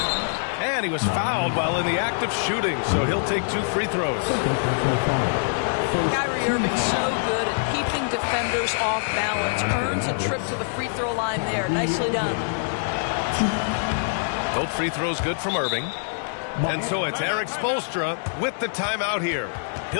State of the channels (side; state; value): right; silent; digital silence